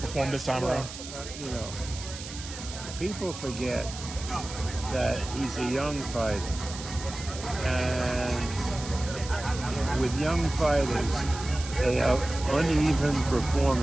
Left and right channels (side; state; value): right; noise; hiss, 11 dB below the sound